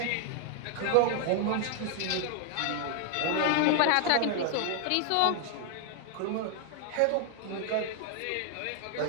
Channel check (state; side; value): different; both; correlation 0.00